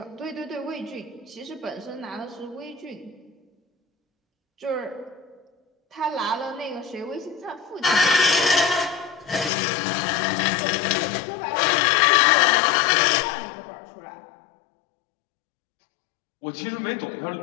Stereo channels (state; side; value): drops out; right; at 9.5 s